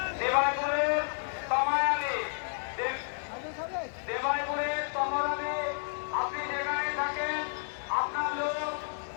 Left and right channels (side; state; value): right; silent; digital silence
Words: দেবাইপুরের তমায় আলী, দেবাইপুরের তমর আলী, আপনি যেখানে থাকেন আপনার লোক